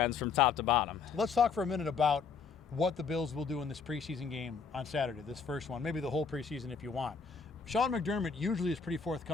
from top to bottom. Let's talk for a minute about what the Bills will do in this preseason game on Saturday, this first one, maybe the whole preseason if you want. Sean McDermott usually is pretty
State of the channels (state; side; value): quieter; right; 5.5 dB